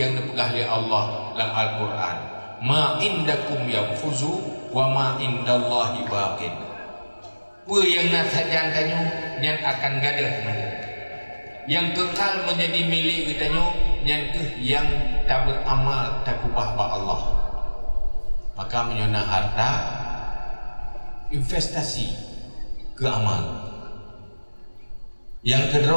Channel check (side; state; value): both; inverted; correlation -1.00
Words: dipegah oleh Allah dalam Al-Quran. Ma indakum yanfuzu wa ma indallahi baqin. Apa yang nasajan tanyo yang akan gadah teman, yang kekal menjadi milik kita nyo, yang tak beramal takubah ba Allah. Maka menyona harta investasi ke amal. Yang